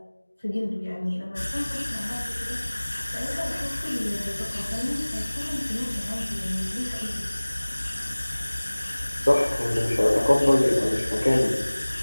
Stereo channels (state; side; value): inverted; both; correlation -1.00